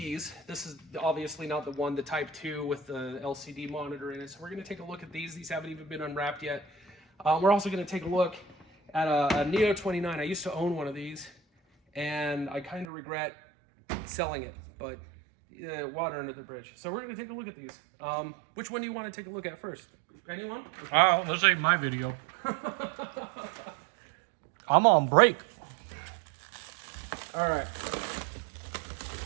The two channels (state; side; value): drops out; left; at 12.9 s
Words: This is obviously not the one, the Type 2 with the LCD monitor in it. So we're going to take a look at these. These haven't even been unwrapped yet. We're also going to take a look at a Neo 29. I used to own one of these, and I kind of regret selling it, but water under the bridge. So we're going to take a look at these. Which one do you want to take a look at first? Anyone? Okay. Oh, this ain't my video. I'm on break. All right.